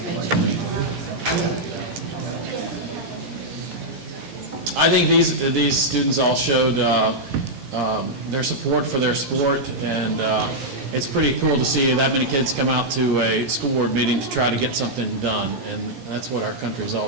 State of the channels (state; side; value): late; left; 17 ms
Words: I think these students all showed their support for their sport, and it's pretty cool to see that many kids come out to a school board meeting to try to get something done, and that's what our country is